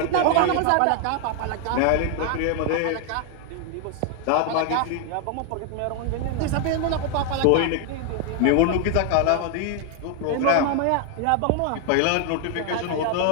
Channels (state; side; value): different; both; correlation 0.00